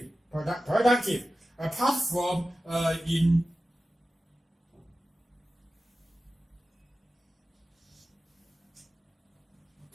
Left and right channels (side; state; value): both; normal; correlation 0.94